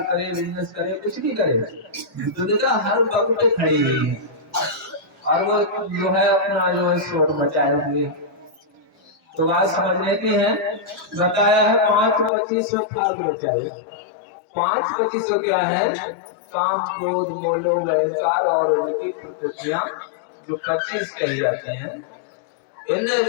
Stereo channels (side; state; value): right; drops out; at 12.3 s